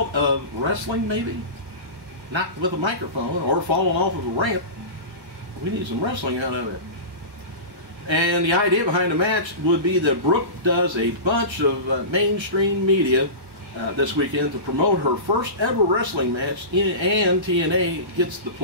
of wrestling, maybe? Not with a microphone or falling off of a ramp. We need some wrestling out of it. And the idea behind the match would be that Brooke does a bunch of mainstream media this weekend to promote her first ever wrestling match, and TNA gets the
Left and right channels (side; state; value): left; late; 1.3 ms